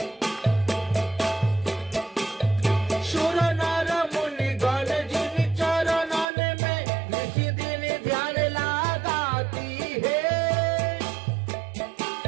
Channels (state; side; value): drops out; left; at 6.2 s